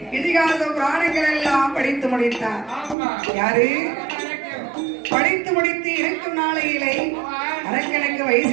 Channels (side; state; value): left; drops out; at 3.0 s